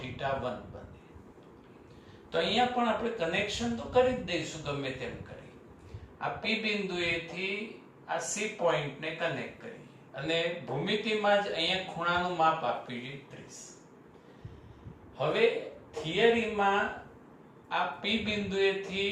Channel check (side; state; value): both; identical; correlation 1.00